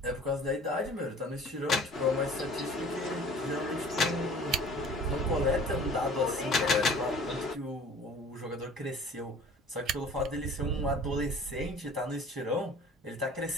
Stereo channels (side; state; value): both; normal; correlation 0.48